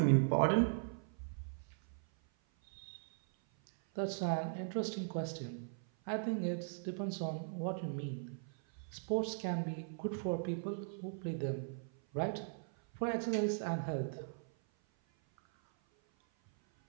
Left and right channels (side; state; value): left; silent; 52 dB below the other